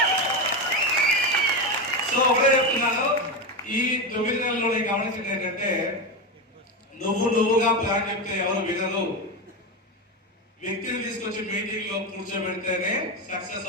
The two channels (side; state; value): both; normal; correlation 0.15